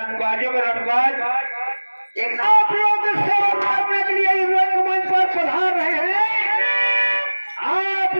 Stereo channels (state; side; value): inverted; both; correlation -1.00